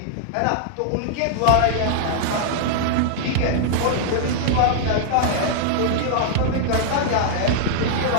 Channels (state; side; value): different; both; correlation -0.01